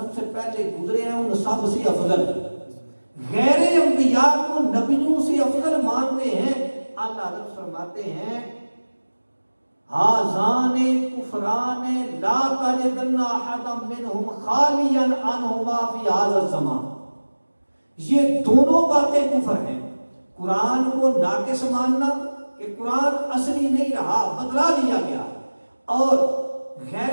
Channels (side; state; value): both; inverted; correlation -1.00